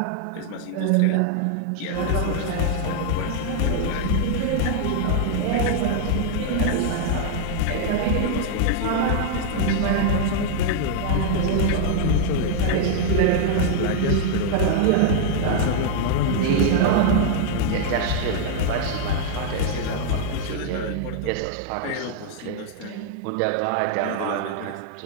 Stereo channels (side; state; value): both; different; correlation -0.01